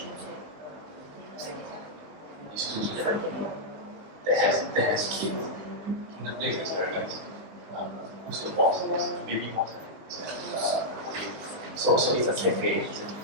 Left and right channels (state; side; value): late; left; 20 ms